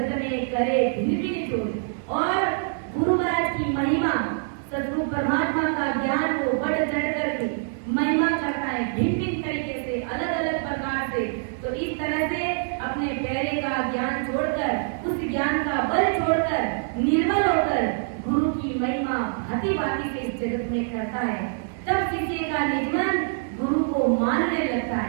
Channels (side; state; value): left; silent; 62 dB below the other